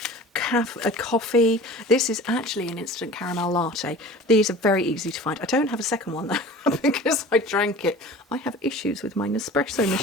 coffee. This is actually an instant caramel latte. These are very easy to find. I don't have a second one though because I drank it. I have issues with my Nespresso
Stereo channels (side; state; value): both; normal; correlation 0.40